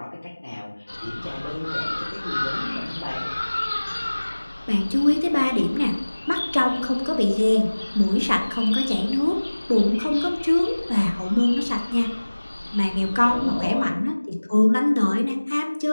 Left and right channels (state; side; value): inverted; both; correlation -1.00